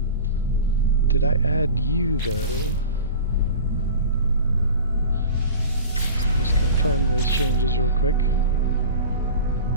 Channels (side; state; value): both; inverted; correlation -0.35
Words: Did I add you though? Just confirm those changes real quick.